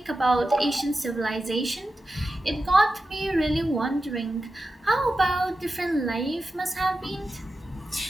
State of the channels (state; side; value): normal; both; correlation 0.92